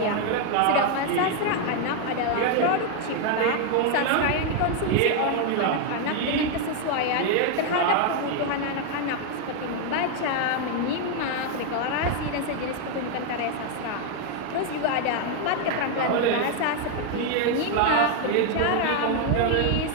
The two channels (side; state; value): both; different; correlation 0.00